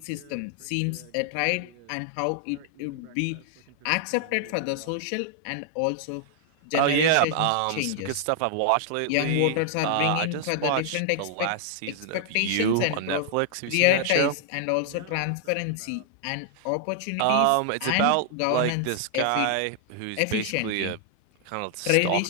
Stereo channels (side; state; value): both; different; correlation 0.00